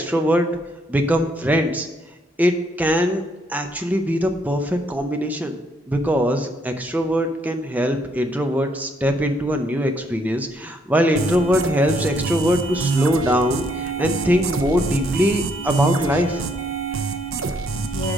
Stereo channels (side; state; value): both; normal; correlation 0.71